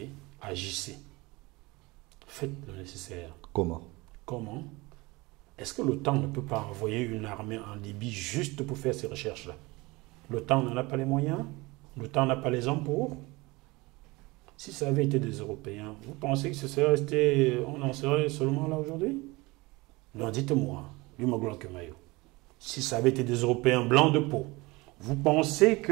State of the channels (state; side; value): quieter; left; 23.2 dB